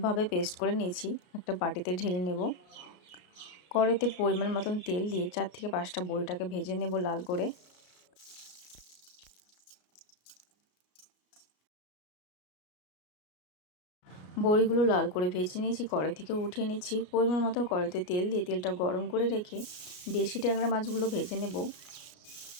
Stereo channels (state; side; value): late; right; 33 ms